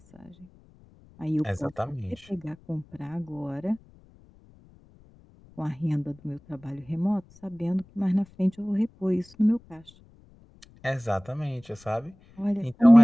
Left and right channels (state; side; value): noise; left; rumble, 26 dB below the sound